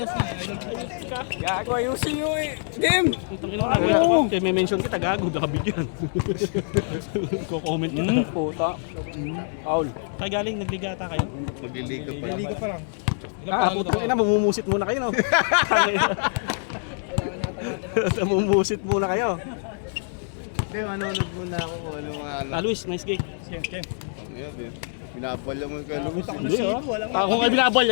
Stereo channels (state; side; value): silent; right; digital silence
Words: na. Gago ayusin nyo eh. Game! Utang ina na. Kaya may mention kita gago, nakabigyan. Ko-comment ka. Puta. Paul. Kagaling, nagligata kayo? Magliliga pa lang. Liga pa lang. Putang ina, mamumusit muna kayo no? Mamumusit muna kayo. Hindi, manonood muna ako kung ano mga ano. Luis, nice gig. Ngayon, din. Binabalya mo kay Luis. Hindi ah. Ako nga